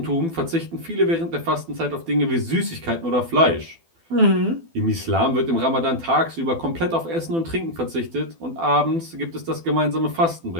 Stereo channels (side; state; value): left; late; 12 ms